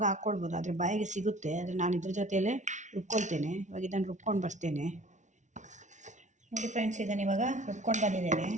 ಹಾಕ್ಕೊಳ್ಬೋದು, ಆದರೆ ಬಾಯಿಗೆ ಸಿಗುತ್ತೆ. ಆದರೆ ನಾನು ಇದ್ರ ಜೊತೆಯಲ್ಲೇ ರುಬ್ಕೊಳ್ತೇನೆ. ಇವಾಗ ಇದನ್ನು ರುಬ್ಕೊಂಡು ಬರ್ತೇನೆ. ನೋಡಿ ಫ್ರೆಂಡ್ಸ್, ಇದನ್ನು ಇವಾಗ ರುಬ್ಕೊಂಡು ಬಂದಿದ್ದೇನೆ.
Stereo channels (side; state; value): left; late; 0.35 ms